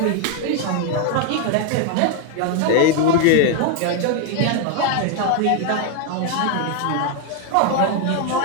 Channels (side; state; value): both; different; correlation 0.01